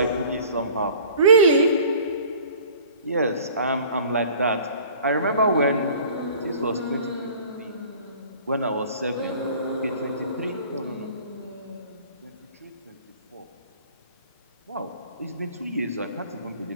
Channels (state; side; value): inverted; both; correlation -0.47